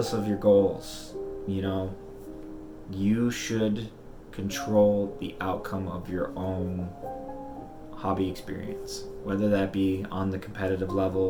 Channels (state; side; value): identical; both; correlation 1.00